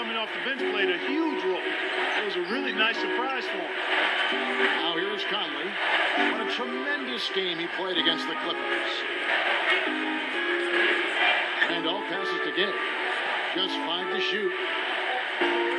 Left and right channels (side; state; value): both; identical; correlation 1.00